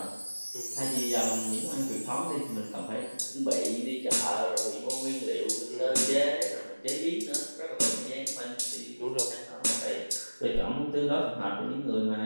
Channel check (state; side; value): inverted; both; correlation -1.00